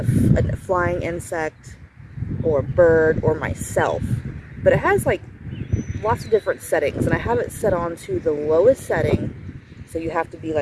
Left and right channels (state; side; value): identical; both; correlation 1.00